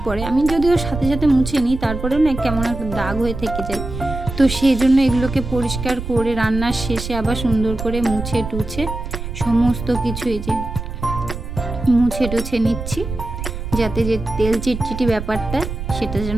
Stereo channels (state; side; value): noise; right; rumble, 7 dB below the sound